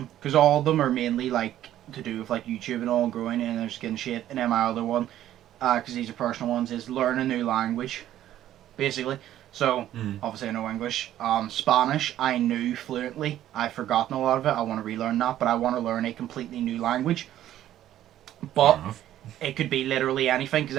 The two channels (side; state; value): left; quieter; 12.4 dB